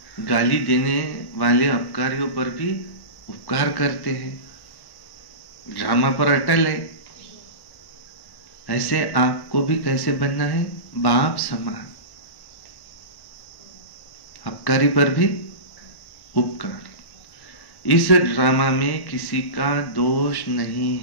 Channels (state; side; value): late; right; 1.1 ms